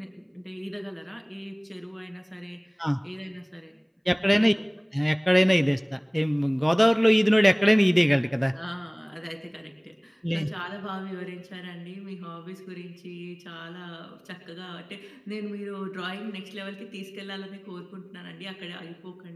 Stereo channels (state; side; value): identical; both; correlation 1.00